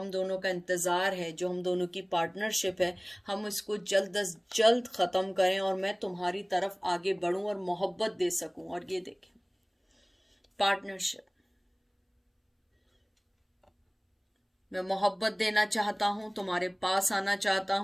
दोनों का इंतज़ार है, जो हम दोनों की पार्टनरशिप है, हम इसको जल्द अज जल्द ख़त्म करें और मैं तुम्हारी तरफ आगे बढ़ूँ और मोहब्बत दे सकूँ। और ये देखें, पार्टनरशिप, मैं मोहब्बत देना चाहता हूँ, तुम्हारे पास आना चाहता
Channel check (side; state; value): both; identical; correlation 1.00